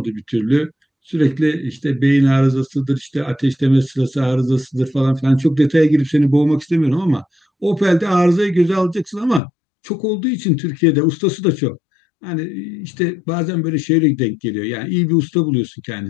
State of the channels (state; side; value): drops out; right; at 9.4 s